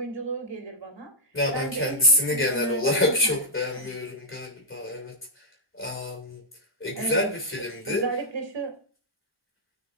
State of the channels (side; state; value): both; normal; correlation -0.10